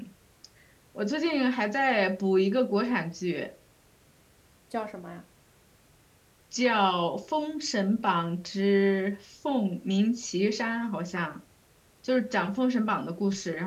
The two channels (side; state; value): both; identical; correlation 1.00